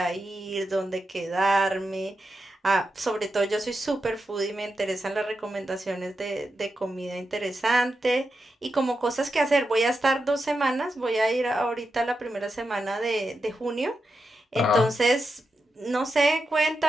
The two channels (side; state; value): both; normal; correlation 0.88